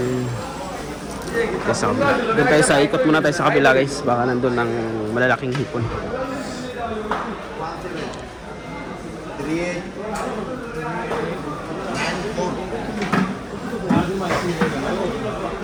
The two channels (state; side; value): identical; both; correlation 1.00